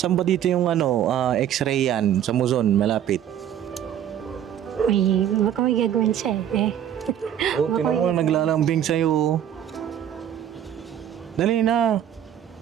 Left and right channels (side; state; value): left; quieter; 10.2 dB